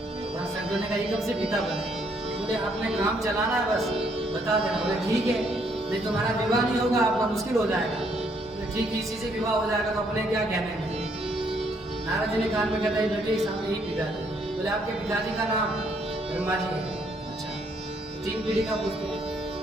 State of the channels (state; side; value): normal; both; correlation 0.70